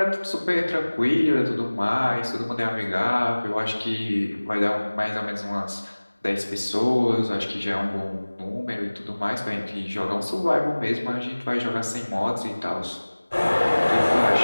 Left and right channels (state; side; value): inverted; both; correlation -1.00